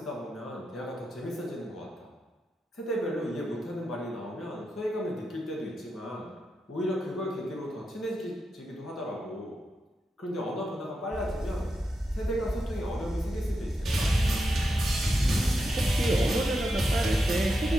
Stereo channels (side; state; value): both; normal; correlation 0.87